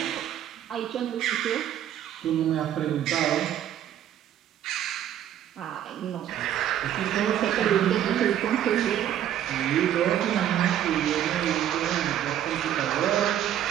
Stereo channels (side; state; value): left; quieter; 10.8 dB